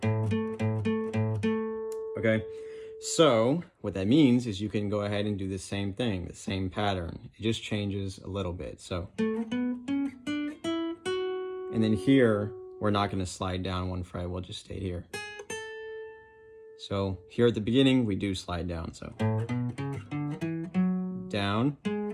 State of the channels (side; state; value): both; identical; correlation 1.00